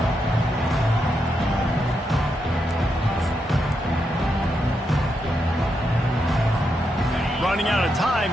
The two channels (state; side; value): normal; both; correlation 0.83